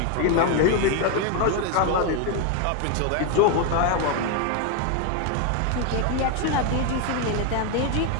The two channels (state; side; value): different; both; correlation 0.01